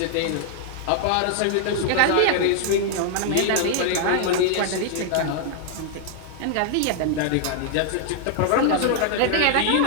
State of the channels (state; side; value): different; both; correlation 0.00